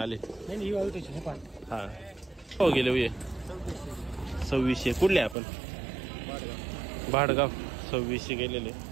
हा हो गेले ये 2600. कुठले आपण? भाडगाव. 2600 गेलेले.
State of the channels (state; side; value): drops out; left; at 5.4 s